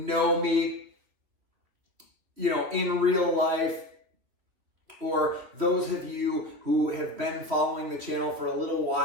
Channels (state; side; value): late; left; 3.0 ms